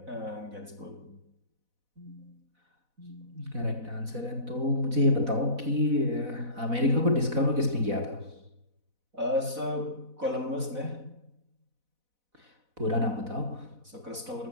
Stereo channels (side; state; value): left; late; 4.0 ms